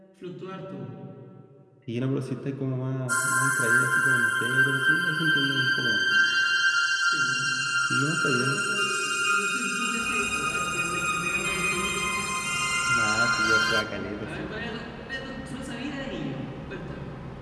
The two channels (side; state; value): both; identical; correlation 1.00